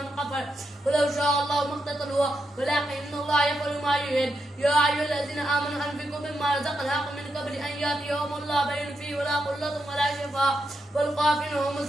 كفر ولو شاء الله ما اقتتلوا ولكن الله يفعل ما يريد يا أيها الذين آمنوا أنفقوا مما رزقناكم من قبل أن يأتي يوم لا بين فيه ولا قلة ولا شفاء والكافرون هم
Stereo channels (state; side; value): normal; both; correlation 0.84